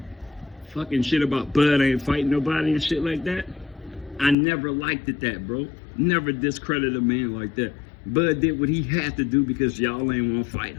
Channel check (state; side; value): drops out; right; at 4.4 s